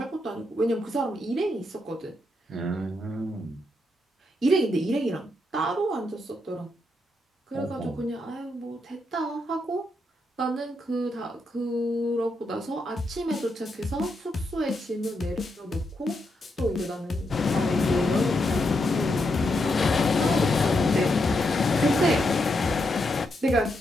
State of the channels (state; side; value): normal; both; correlation 0.81